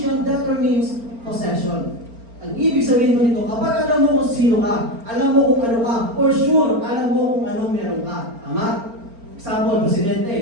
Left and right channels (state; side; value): late; left; 4.4 ms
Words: determines possession. Ang ibig sabihin mo nito, kapag alam mo kung sino ka, alam mo kung ano ka, for sure, alam mo kung anong meron ka. Tama? Example,